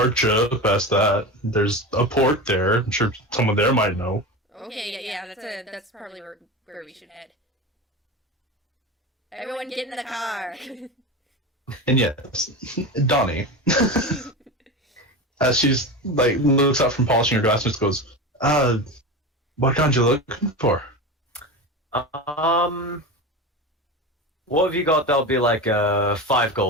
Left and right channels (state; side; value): normal; both; correlation 0.25